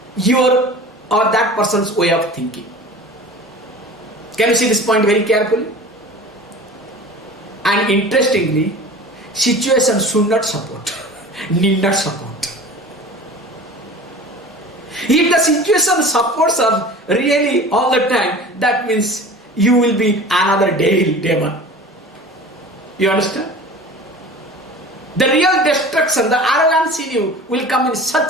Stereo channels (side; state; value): both; normal; correlation 0.39